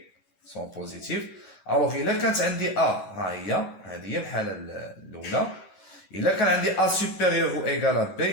sont positifs. الوغ الا كانت عندي a ها هي، هذه هي الحاله الاولى. إلا كان عندي A supérieur ou égal à B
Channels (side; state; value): right; late; 11 ms